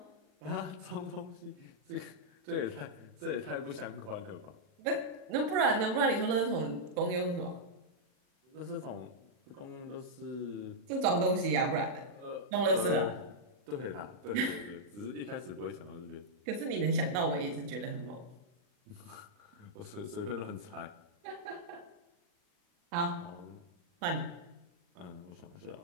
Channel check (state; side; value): late; left; 40 ms